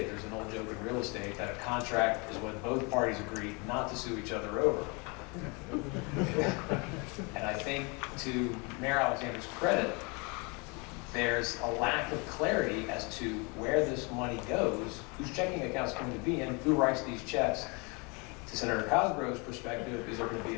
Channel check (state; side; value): quieter; right; 30.5 dB